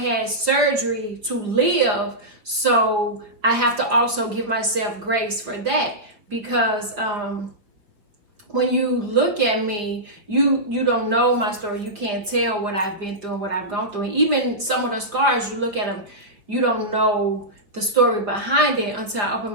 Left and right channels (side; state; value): left; late; 5.0 ms